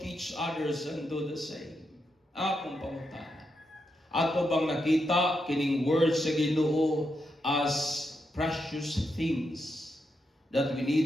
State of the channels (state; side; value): normal; both; correlation 0.84